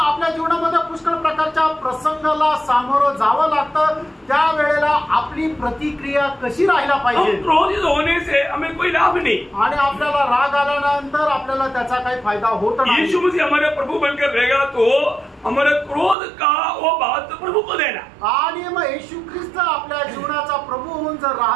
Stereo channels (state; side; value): drops out; left; at 16.2 s